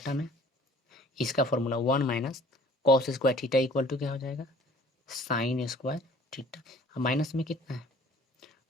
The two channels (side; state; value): both; normal; correlation 0.52